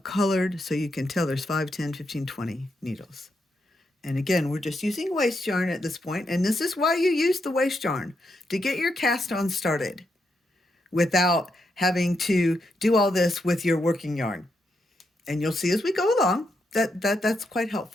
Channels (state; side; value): normal; both; correlation 0.82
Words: so you can tell there's 5, 10, 15, 20 needles. And again, we're just using waste yarn at this point, and this is why you use the waste yarn, to get your cast on started without having to do all this with your working yarn. And you'll see as we go along that's quite